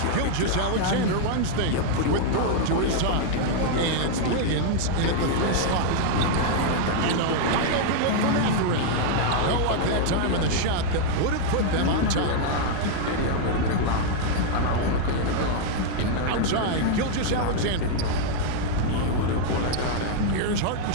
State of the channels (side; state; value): both; different; correlation 0.00